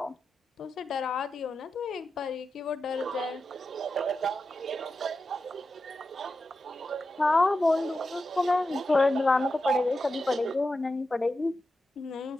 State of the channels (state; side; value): normal; both; correlation 0.91